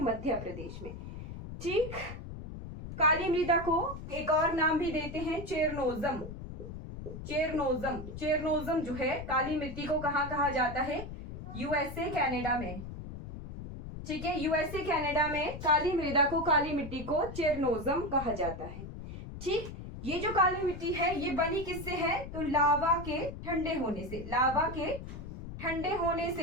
मध्य प्रदेश में, ठीक। काली मृदा को एक और नाम भी देते हैं चेरनोजम जो है काली मिट्टी को कहाँ कहा जाता है, यूएसए कनाडा में, ठीक है, यूएसए कनाडा में काली मृदा को, काली मिट्टी को चेरनोजम कहा जाता है, ठीक। ये जो काली मिट्टी है ये बनी किससे है, तो लावा के ठंडे होने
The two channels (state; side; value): noise; left; rumble, 10 dB below the sound